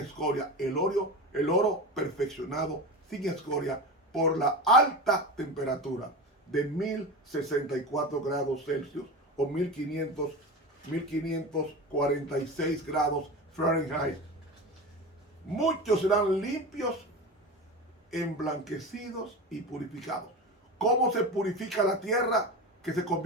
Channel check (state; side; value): normal; both; correlation 0.26